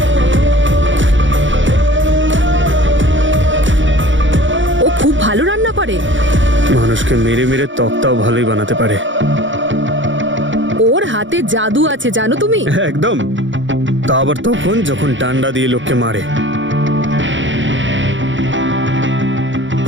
ও খুব ভালো রান্না করে, মানুষকে মেরে মেরে তক্তাও ভালোই বানাতে পারে। ওর হাতে জাদু আছে জানো তুমি। একদম, তা আবার তখন যখন ডান্ডা দিয়ে লোককে মারে।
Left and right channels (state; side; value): late; left; 0.55 ms